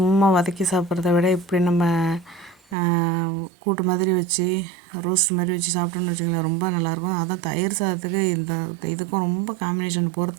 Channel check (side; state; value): left; drops out; at 2.8 s